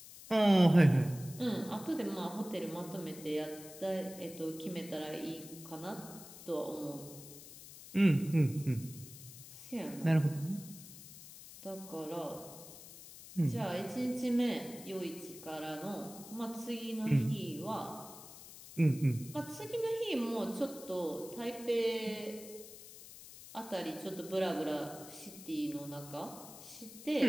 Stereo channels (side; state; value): left; noise; hiss, 16 dB below the sound